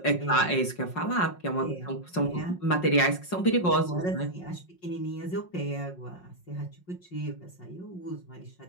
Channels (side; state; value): right; late; 5.5 ms